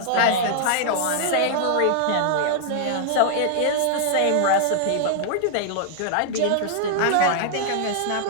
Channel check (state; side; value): different; both; correlation -0.01